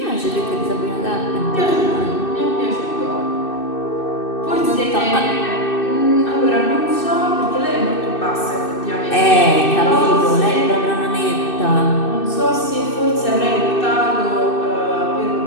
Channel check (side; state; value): right; late; 2.6 ms